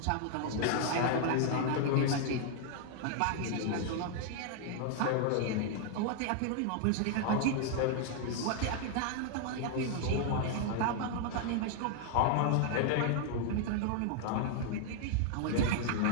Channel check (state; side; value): different; both; correlation 0.00